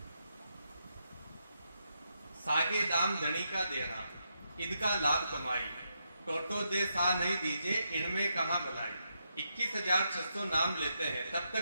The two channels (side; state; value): both; inverted; correlation -0.82